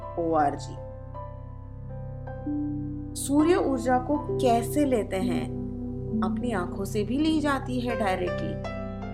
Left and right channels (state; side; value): identical; both; correlation 1.00